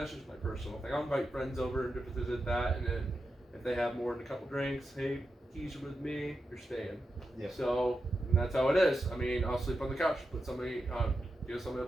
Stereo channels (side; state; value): both; normal; correlation 0.88